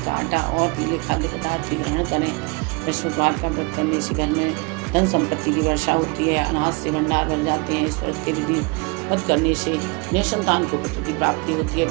का आटा और पीले खाद्य पदार्थ की ग्रहण करें। बृहस्पतिवार का व्रत करने से घर में धन संपत्ति की वर्षा होती है, अनाज से भंडार भर जाते हैं। इस व्रत के विधि व्रत करने से निसंतान को पुत्र की प्राप्ति होती है।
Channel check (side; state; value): left; quieter; 28.7 dB